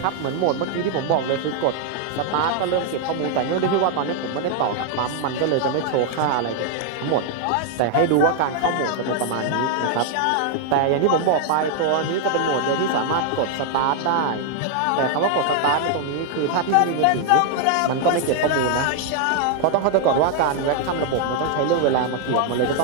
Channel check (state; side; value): different; both; correlation 0.00